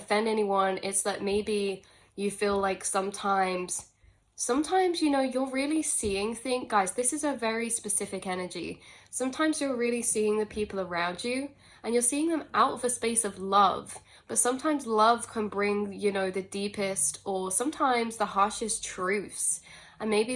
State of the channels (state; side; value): identical; both; correlation 1.00